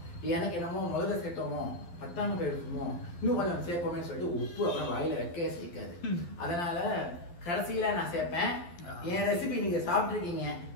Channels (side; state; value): right; late; 11 ms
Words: எனக்கு என்னமோ முதல்ல சேர்த்தோமோ பத்தாம போயிருக்குமோ இன்னும் கொஞ்சம் சேர்ப்போமே சொல்லிட்டு உப்பு அப்புறம் வாயில வைக்கவே சேர்க்காது. அதனால கடைசியில நான் சேர்ப்பேன். என் ரெசிபி நீங்க சாப்பிட்டுருக்கீங்க,